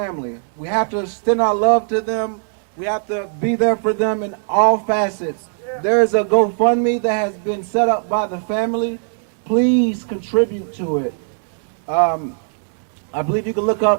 We have to extend our love to them. We have to be there for them in all facets. There is a GoFundMe that has been set up by the family. Please contribute to it. I believe you can look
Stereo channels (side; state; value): left; silent; digital silence